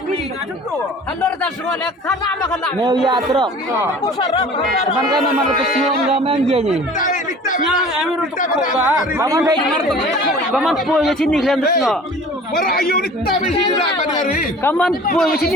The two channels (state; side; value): normal; both; correlation 0.45